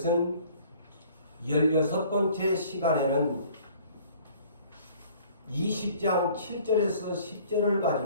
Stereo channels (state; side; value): inverted; both; correlation -0.53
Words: 16번째 시간에는 20장 7절에서 10절을